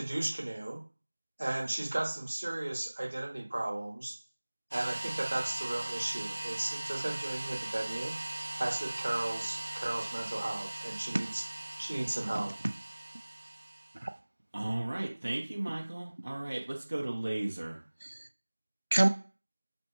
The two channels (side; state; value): both; inverted; correlation -1.00